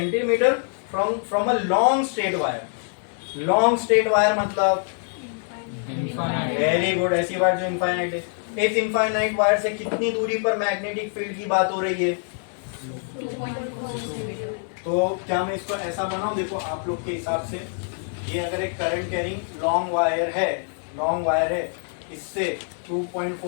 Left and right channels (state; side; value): silent; right; 62 dB below the other